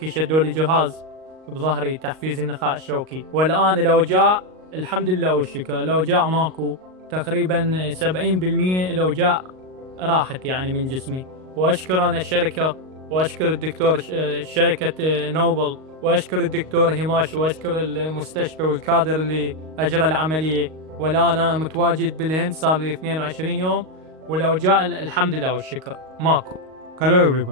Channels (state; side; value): late; left; 38 ms